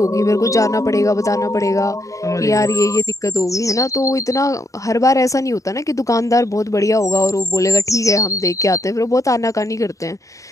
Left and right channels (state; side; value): late; right; 0.16 ms